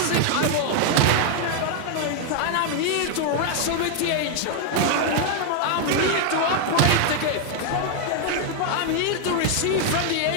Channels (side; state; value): both; different; correlation 0.00